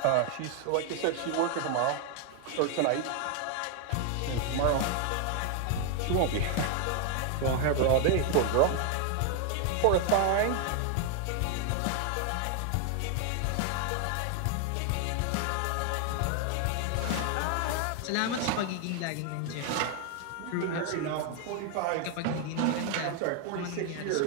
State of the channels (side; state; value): both; different; correlation 0.00